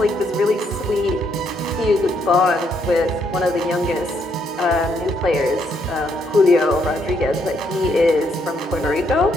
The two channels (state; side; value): normal; both; correlation 0.73